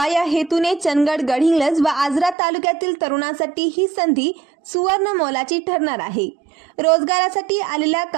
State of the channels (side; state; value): left; drops out; at 2.4 s